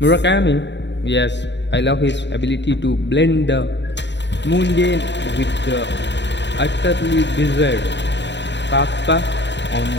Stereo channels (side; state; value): right; late; 0.52 ms